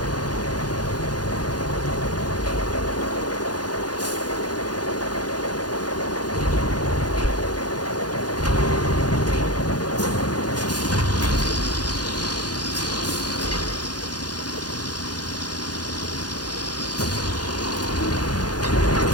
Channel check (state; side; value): late; right; 0.69 ms